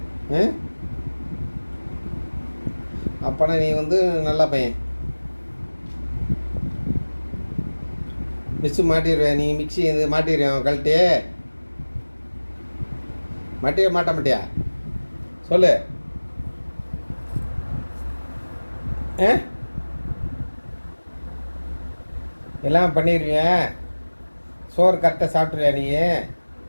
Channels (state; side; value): inverted; both; correlation -1.00